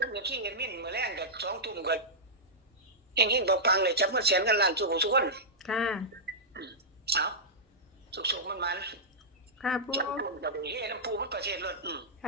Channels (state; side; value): normal; both; correlation -0.11